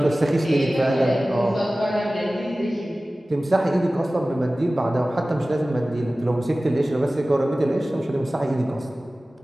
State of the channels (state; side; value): normal; both; correlation 0.97